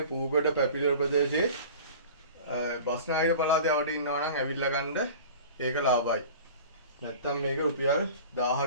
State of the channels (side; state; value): both; inverted; correlation -0.39